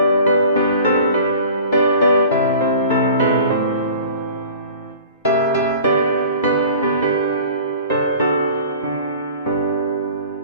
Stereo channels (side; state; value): both; inverted; correlation -0.43